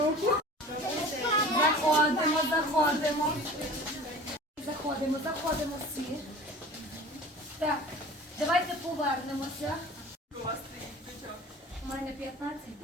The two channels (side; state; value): both; normal; correlation 0.41